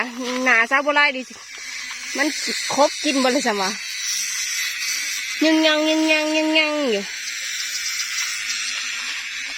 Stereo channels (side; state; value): both; identical; correlation 1.00